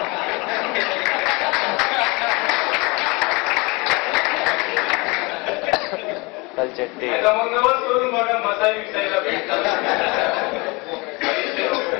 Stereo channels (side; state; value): right; quieter; 26.7 dB